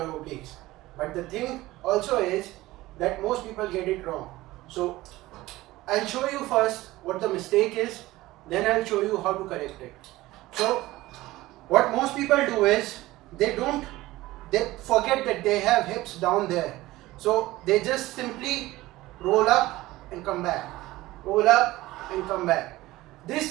obliques. But the thing also is that most people get it wrong. So I'll show you first what the mistake is, then I'll show you how to correct it. So what most people do is they forget that they have hips down there. So they just simply roll up and come back, roll up and come back.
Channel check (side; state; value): left; quieter; 17.9 dB